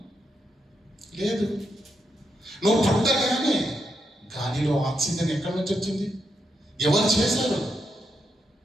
లేదు. నువ్వు పుట్టగానే గాలిలో ఆక్సిజన్ ఎక్కడి నుంచి వచ్చింది? ఎవరు చేశారు?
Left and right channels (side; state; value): both; normal; correlation 0.82